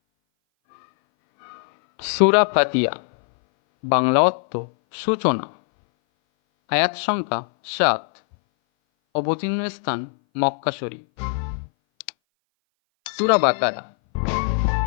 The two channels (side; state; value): right; silent; 59 dB below the other